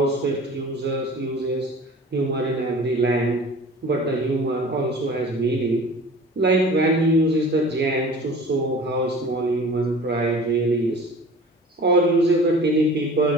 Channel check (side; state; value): both; normal; correlation 0.42